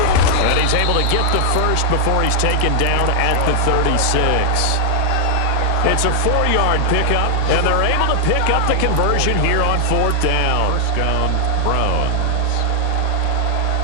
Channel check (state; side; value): different; both; correlation 0.00